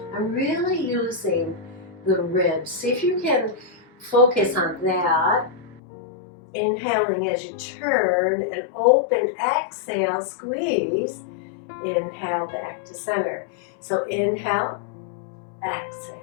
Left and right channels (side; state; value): right; drops out; at 5.8 s